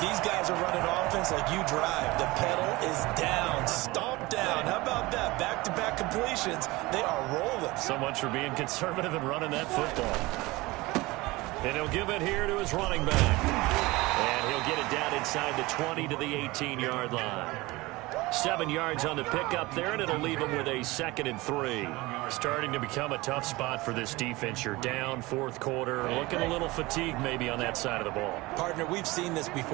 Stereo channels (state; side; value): quieter; left; 21.3 dB